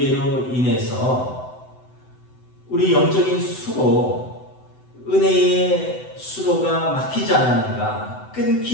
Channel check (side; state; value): right; late; 7.9 ms